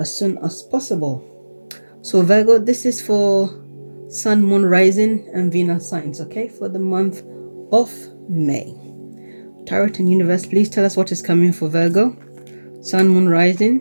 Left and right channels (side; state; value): both; inverted; correlation -1.00